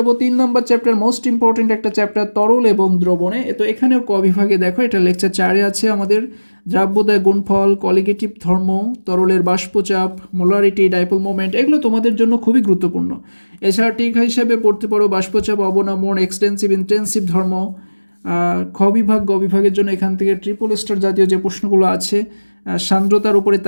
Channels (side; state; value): both; inverted; correlation -1.00